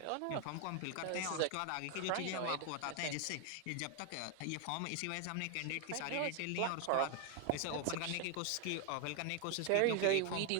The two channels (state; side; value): different; both; correlation 0.01